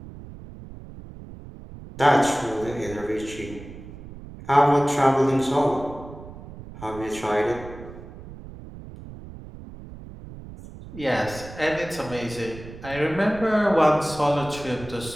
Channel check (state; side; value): noise; right; rumble, 15 dB below the sound